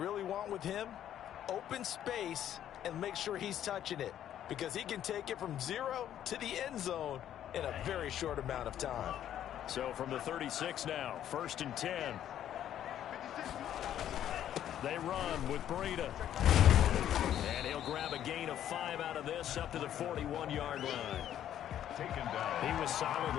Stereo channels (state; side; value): quieter; right; 10.9 dB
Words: want with him, open space and make sure he's touching it, because he can take it from 0 to the end zone in a very short amount of time. So from the 36 now, 1st and 10. They run with Breida. And he'll grab a gain of 5 out of this up to the 41-yard line. Taken down. He was solid